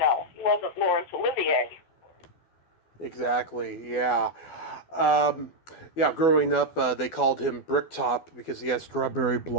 wasn't Laurence Olivier. Exactly, yeah. Yeah, growing up, they called him Bricktop because he had strawberry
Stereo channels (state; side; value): late; right; 12 ms